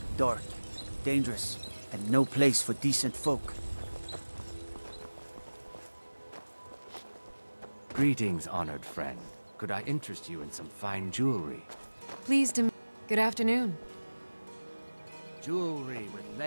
Dark, dangerous, and no place for decent folk. Greetings, honored friend. Could I interest you in some fine jewelry? Pleased to... Good afternoon. Jewelry with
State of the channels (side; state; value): both; inverted; correlation -1.00